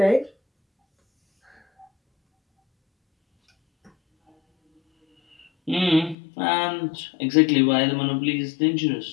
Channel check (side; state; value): right; drops out; at 6.2 s